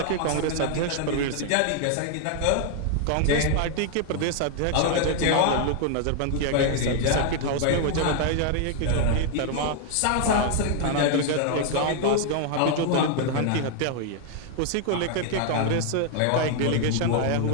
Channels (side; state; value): both; different; correlation 0.00